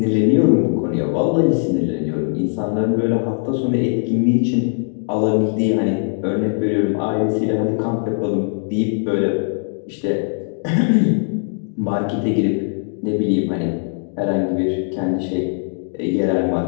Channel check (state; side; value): silent; right; 61 dB below the other